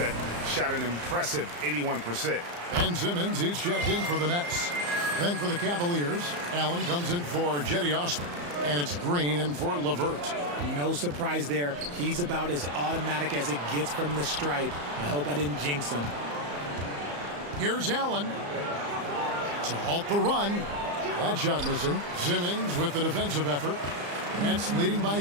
shot an impressive 81%. Ben Simmons, he's checked in for the Nets. Then for the Cavaliers, Allen comes in for Jetty Osman. And it's Green in for LeVert. No surprise there. He's about as automatic as it gets from the stripe. I hope I didn't jinx him. Here's Allen to halt the run. That shot missing. Simmons with the defensive effort. Nets leading by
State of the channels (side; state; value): left; late; 34 ms